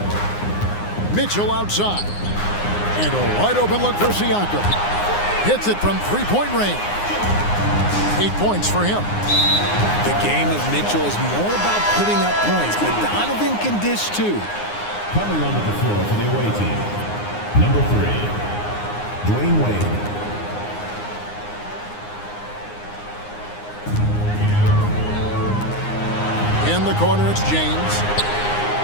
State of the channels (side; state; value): right; late; 9.7 ms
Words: Mitchell outside. And a wide open look for Siakam. Hits it from three-point range. 8 points for him. The game of Mitchell is more about putting up points, but Donovan can dish too. Coming onto the floor for the away team, number 3, Dwayne Wade. In the corner, it's James.